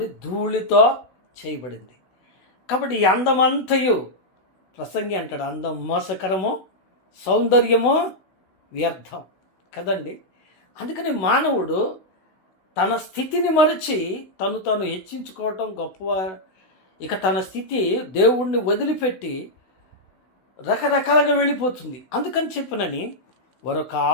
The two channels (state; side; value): late; right; 16 ms